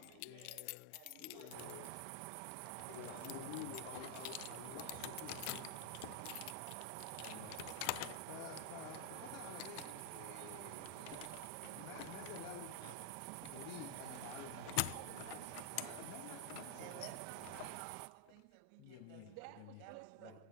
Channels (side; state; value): both; different; correlation 0.00